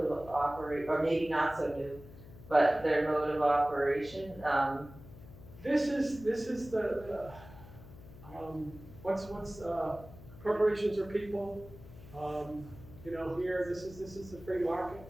of operation, or maybe not so new, but their mode of operation? This is the corporations are people. Here this is the free market.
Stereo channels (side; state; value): left; noise; hum, 17 dB below the sound